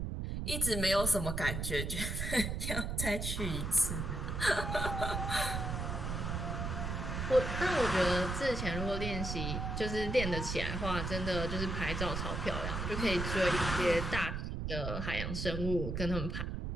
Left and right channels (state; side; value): noise; right; rumble, 3 dB below the sound